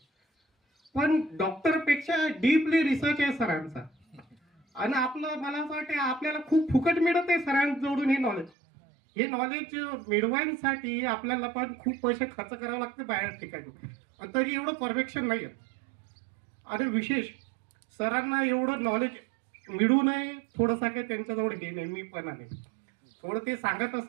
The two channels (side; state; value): left; drops out; at 8.5 s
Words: पण डॉक्टरपेक्षा डीपली रिसर्च आहे सरांचा. आणि आपलं मला असं वाटतं आपल्याला खूप फुकट मिळत आहे सरांजवळून हे नॉलेज. हे नॉलेज मिळवायसाठी आपल्याला पण खूप पैसे खर्च करावे लागते बाहेर ठिकाणी, तरी एवढं परफेक्शन नाही आहे. आणि विशेष सरांना एवढं नॉलेज मिळू नये थोडंसं काही त्यांच्याजवळ हे नाही, मी पण आहे थोडं ते सांगत